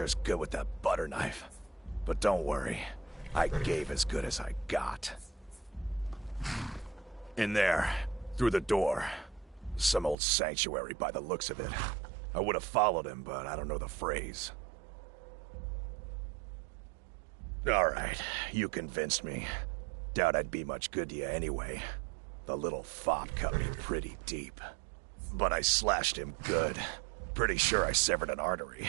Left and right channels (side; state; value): left; drops out; at 10.2 s